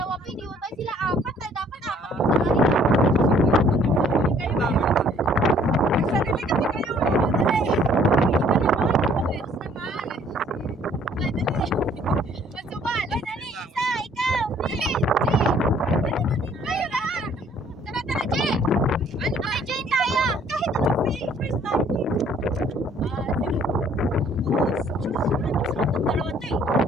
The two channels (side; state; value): both; normal; correlation 0.60